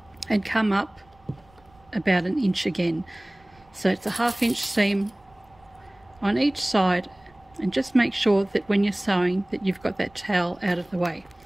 and come up about an inch again. So it's a ½ inch seam on each side, and just make sure that when you're sewing that you've got that towel out of the way.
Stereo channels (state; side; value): noise; right; rumble, 30 dB below the sound